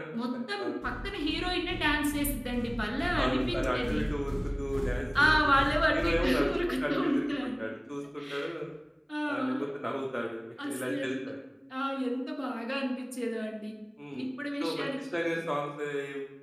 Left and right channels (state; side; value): identical; both; correlation 1.00